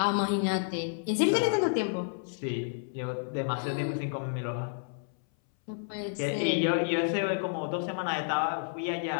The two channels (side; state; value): right; silent; 58 dB below the other